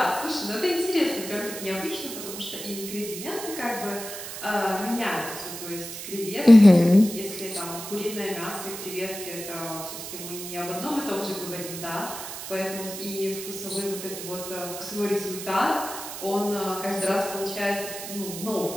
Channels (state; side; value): noise; right; hiss, 9 dB below the sound